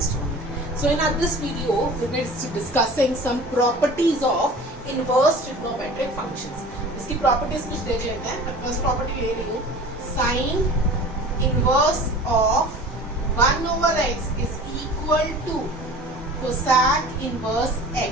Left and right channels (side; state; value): both; normal; correlation 0.41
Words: on it. So in this video, we will be discussing some properties of inverse trigonometric functions. इसकी properties कुछ देख लेते हैं. मैं first property ले रही हूँ. Sin inverse of 1 over x is equal to cosec inverse